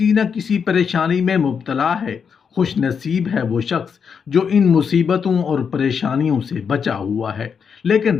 نہ کسی پریشانی میں مبتلا ہے۔ خوش نصیب ہے وہ شخص جو ان مصیبتوں اور پریشانیوں سے بچا ہوا ہے، لیکن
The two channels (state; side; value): quieter; right; 6.6 dB